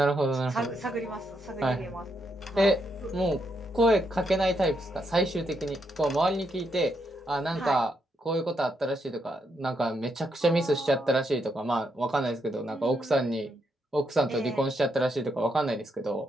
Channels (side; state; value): both; normal; correlation 0.79